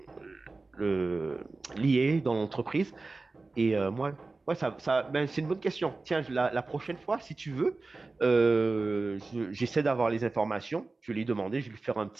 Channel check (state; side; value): quieter; left; 3.6 dB